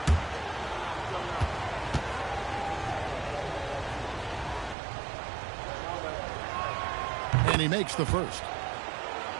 And he makes the first.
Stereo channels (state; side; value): drops out; left; at 4.8 s